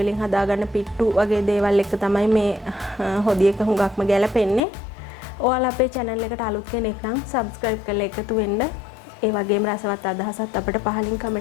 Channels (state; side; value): drops out; right; at 4.6 s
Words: වලින් හදාගන්න පිට්ටු වගේ දේවල් එක තමයි මේ හොදියක හුඟක්ම ගැලපෙන්නේ. ඔයාලා අපේ channel එකට අලුත් කෙනෙක් නම් subscribe කරලා එකතු වෙන්න. ඒ වගේම රසවත් අදහසත් අපිට පහලින්